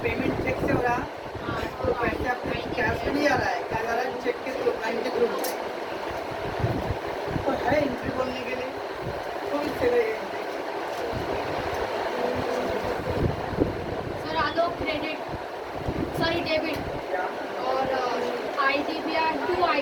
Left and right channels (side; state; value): both; identical; correlation 1.00